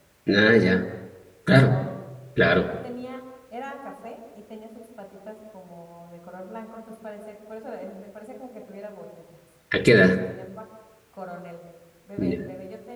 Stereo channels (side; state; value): both; identical; correlation 1.00